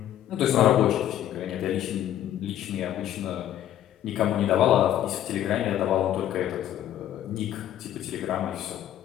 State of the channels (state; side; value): quieter; right; 11.8 dB